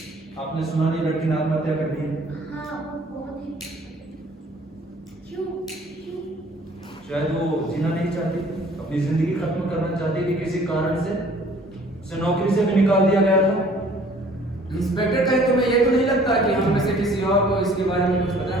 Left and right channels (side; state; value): both; normal; correlation 0.55